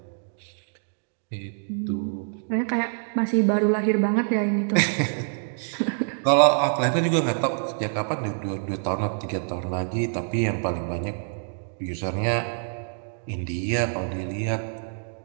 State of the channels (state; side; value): silent; left; digital silence